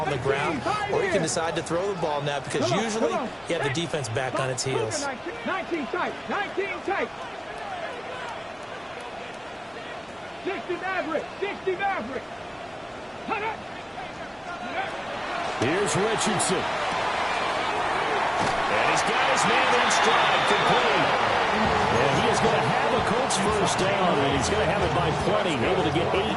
on the ground, or you can decide to throw the ball now because usually you have the defense back on its heels. 19 tight, 19 tight. 60 Maverick, 60 Maverick. Here's Richardson. And he's got his man in stride, complete. And he is going to have a Colts first down, and he's going to have it by plenty. Able to get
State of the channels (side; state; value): both; identical; correlation 1.00